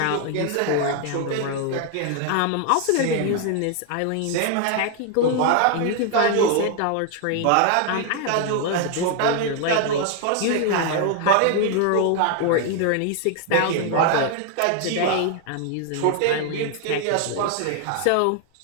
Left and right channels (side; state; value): both; different; correlation 0.00